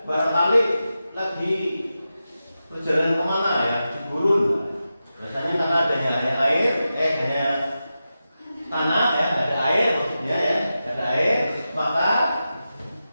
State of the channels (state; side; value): inverted; both; correlation -0.91